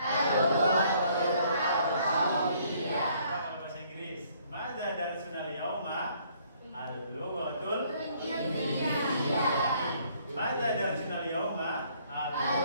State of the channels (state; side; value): inverted; both; correlation -0.64